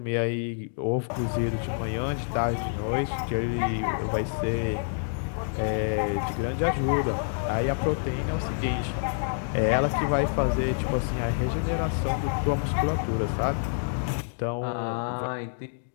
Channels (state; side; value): silent; right; digital silence